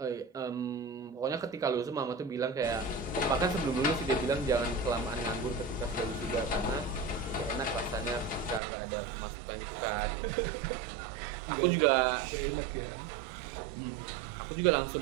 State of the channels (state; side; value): drops out; left; at 8.6 s